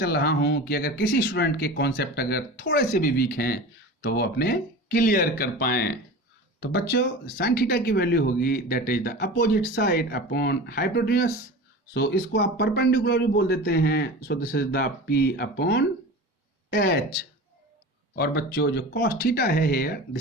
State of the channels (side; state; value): both; normal; correlation 0.33